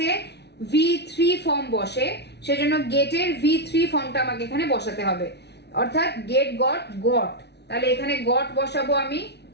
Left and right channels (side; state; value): right; late; 0.49 ms